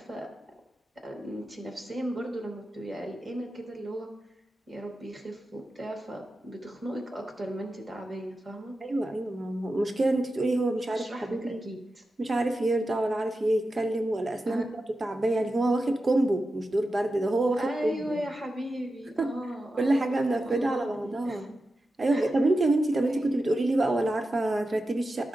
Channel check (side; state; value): both; normal; correlation 0.91